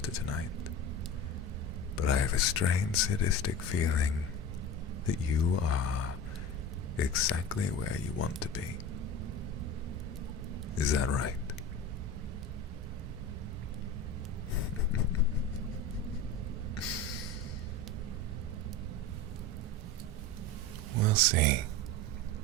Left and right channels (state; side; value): normal; both; correlation 0.31